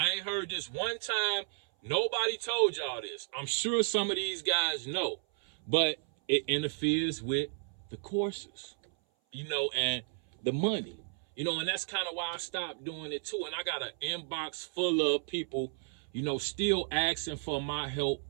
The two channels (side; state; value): left; silent; 56 dB below the other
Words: ain't heard this one time. Nobody told y'all this. I'm sure some of these guys know, but it interferes with the courses, and the money, and that's kind of why I stopped doing it too. And I got an inbox full of people, still asking for my help